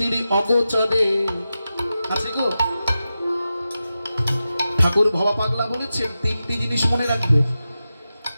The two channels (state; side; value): inverted; both; correlation -0.92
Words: অগোচরে আছে গো। ঠাকুর ভবা পাগলা বলেছেন 3টি জিনিস মনে রাখবে।